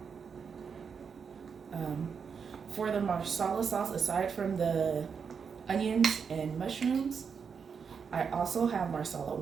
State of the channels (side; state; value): left; quieter; 6.2 dB